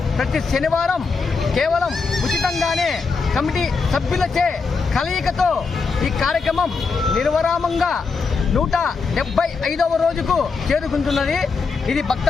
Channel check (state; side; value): quieter; right; 4.7 dB